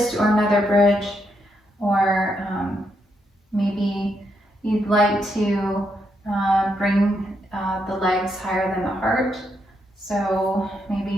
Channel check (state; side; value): normal; both; correlation 0.79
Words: or another bridge, or maybe you'd like to bring the legs higher than the heart. So